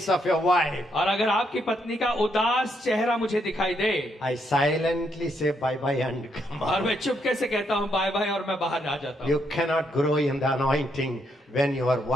of your wife, और अगर आपकी पत्नी का उदास चेहरा मुझे दिखाई दे I silently say bye-bye and come और on. मैं चुपके से कहता हूँ बाय बाय और मैं बाहर आ जाता हूँ। You cannot grow in the anointing when your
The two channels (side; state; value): both; normal; correlation 0.76